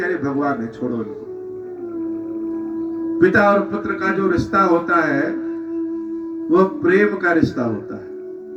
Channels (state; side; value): identical; both; correlation 1.00